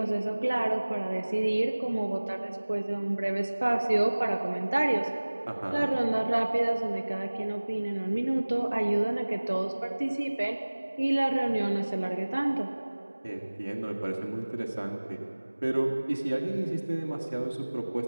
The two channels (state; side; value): inverted; both; correlation -1.00